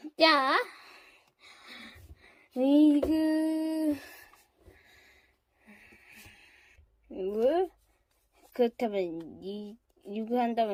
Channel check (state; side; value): identical; both; correlation 1.00